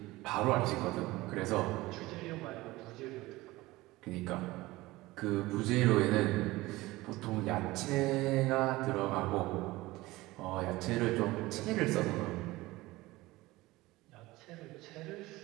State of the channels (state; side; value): quieter; left; 19.4 dB